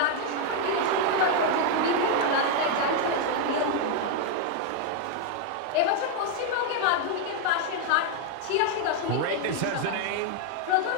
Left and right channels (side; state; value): both; different; correlation 0.00